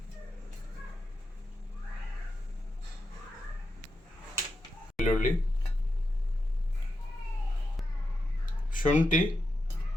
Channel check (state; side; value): normal; both; correlation 0.87